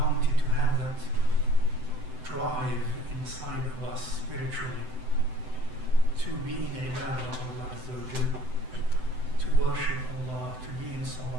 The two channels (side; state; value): left; late; 7.8 ms